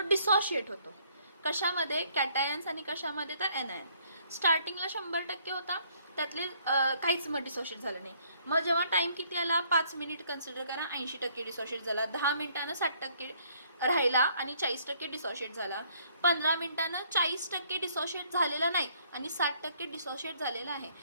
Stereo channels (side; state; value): both; inverted; correlation -0.64